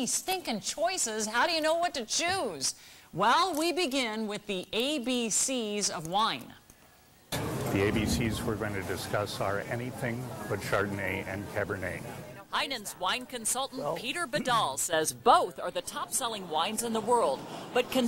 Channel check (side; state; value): both; identical; correlation 1.00